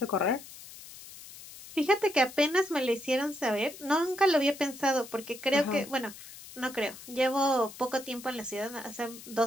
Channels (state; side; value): noise; left; hiss, 16 dB below the sound